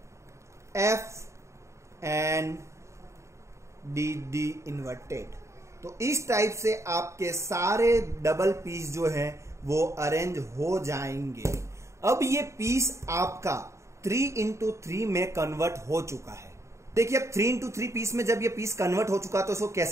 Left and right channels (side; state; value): left; late; 0.14 ms